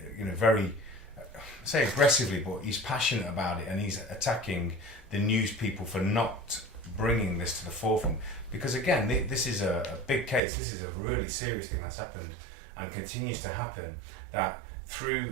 you know, very, I say aggressively, but he's passionate about it, and he's attacking the news people for not bringing this to the forefront. Because again, this is a big case. This is a really serious thing that's happened and continues to happen. That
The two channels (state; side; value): drops out; left; at 10.4 s